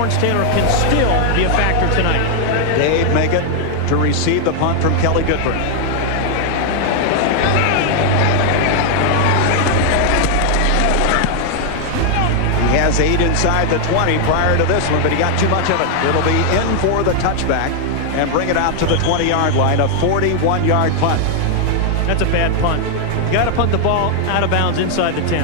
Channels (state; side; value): different; both; correlation 0.00